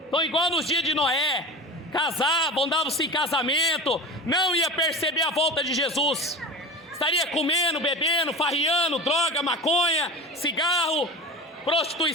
Estão igual nos dias de Noé. Casavam, davam-se em casamento. Não ia perceber a volta de Jesus. Estaria comendo, bebendo, farriando, droga, maconha, cigarro,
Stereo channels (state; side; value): normal; both; correlation 0.33